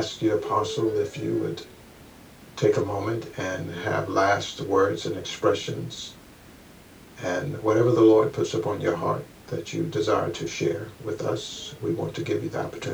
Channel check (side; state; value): both; identical; correlation 1.00